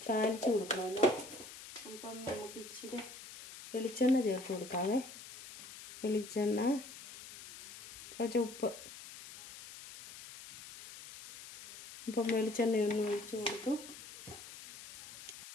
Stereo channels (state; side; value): noise; left; hiss, 14 dB below the sound